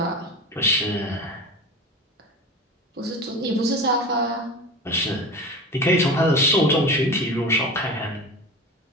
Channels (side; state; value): both; normal; correlation 0.31